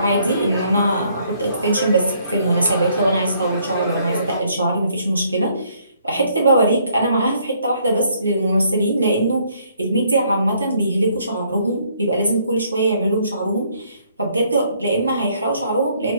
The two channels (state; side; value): inverted; both; correlation -0.67